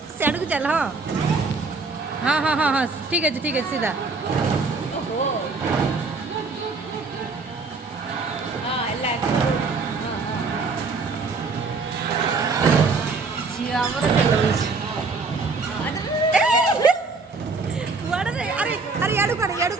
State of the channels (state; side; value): quieter; left; 4.2 dB